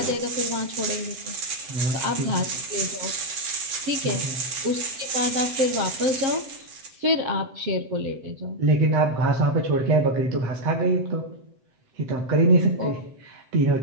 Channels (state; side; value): late; left; 7.7 ms